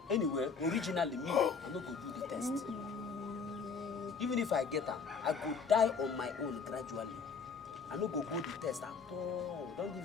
Anyway, originally me, I'm not going to do the test. Even if I get her, I go die on my own gradually. I no go the test at all. Don't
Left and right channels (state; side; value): quieter; right; 5.4 dB